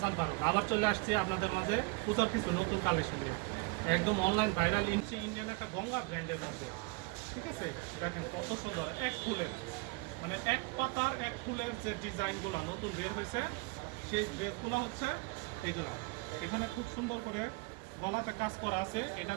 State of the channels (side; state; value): left; quieter; 27.2 dB